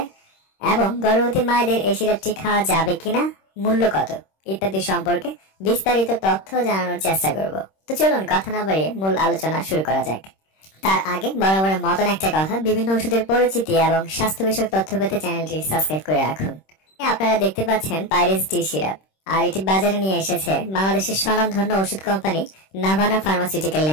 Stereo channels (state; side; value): late; right; 26 ms